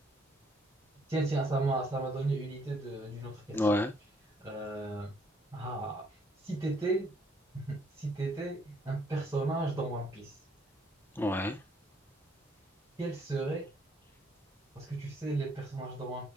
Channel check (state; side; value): normal; both; correlation 0.67